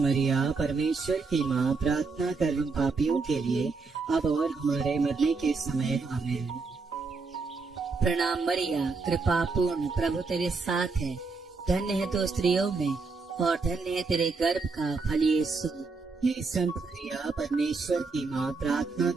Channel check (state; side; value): quieter; left; 4.3 dB